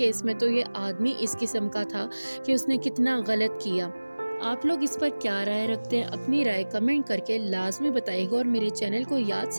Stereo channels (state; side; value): inverted; both; correlation -1.00